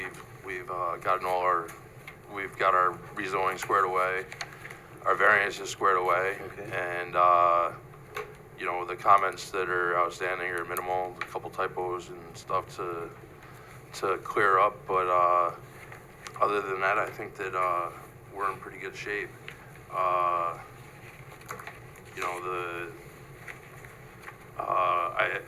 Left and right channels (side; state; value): both; identical; correlation 1.00